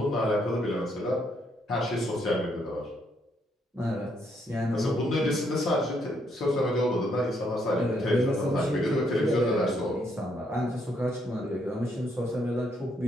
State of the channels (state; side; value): normal; both; correlation 0.73